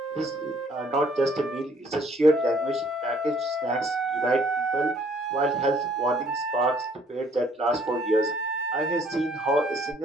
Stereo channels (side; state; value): both; normal; correlation 0.61